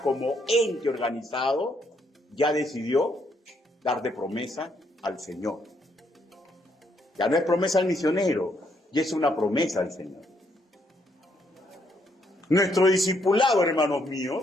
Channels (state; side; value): normal; both; correlation 0.73